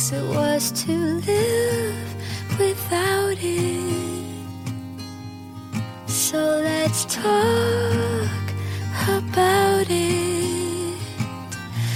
it worse to live without it. So let's talk about it.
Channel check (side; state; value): both; identical; correlation 1.00